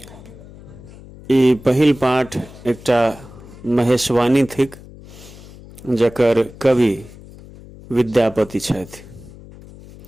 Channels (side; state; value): left; noise; hum, 19 dB below the sound